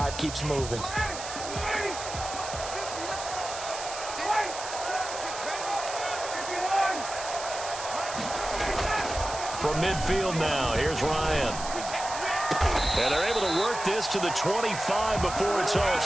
keeps moving. From midfield now, here's Ryan. And they're able to work this to the 25 before it's all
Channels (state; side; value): noise; right; hiss, 9 dB below the sound